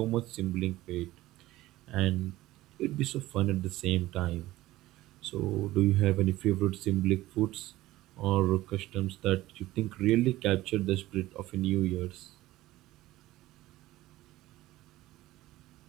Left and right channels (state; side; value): quieter; left; 16.8 dB